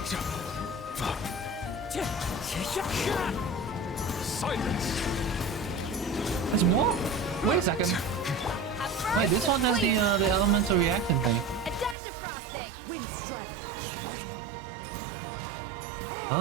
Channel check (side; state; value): left; drops out; at 12.0 s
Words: Silence! There's more? Wait a second. Wait, this one has the elemental reaction thing.